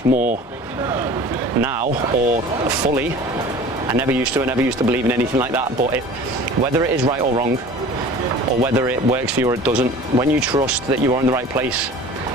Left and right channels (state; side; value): normal; both; correlation 0.42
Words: more now, or fully. I never used to believe in anything like that, but whether it is right or wrong, or whether it works for you or it doesn't, when you trust that you are in the right place,